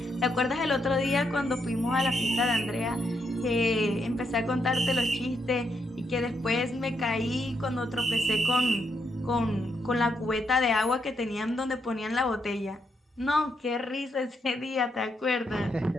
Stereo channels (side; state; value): both; normal; correlation 0.79